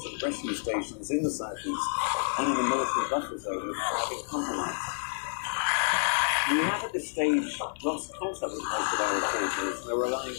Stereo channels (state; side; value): silent; right; digital silence